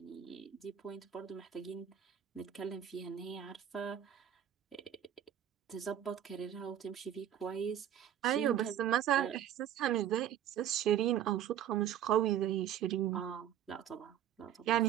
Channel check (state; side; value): quieter; left; 10.3 dB